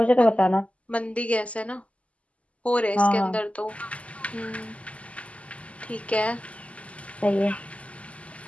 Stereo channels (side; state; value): right; late; 0.064 ms